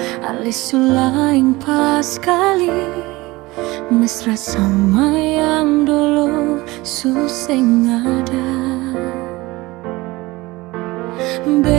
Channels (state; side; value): quieter; left; 21.0 dB